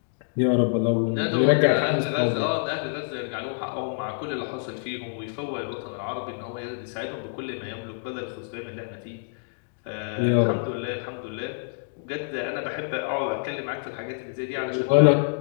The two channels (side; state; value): right; silent; digital silence